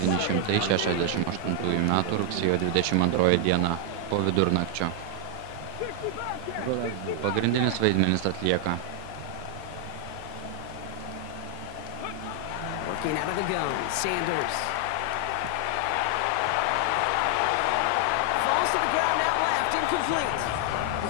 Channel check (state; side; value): different; both; correlation 0.00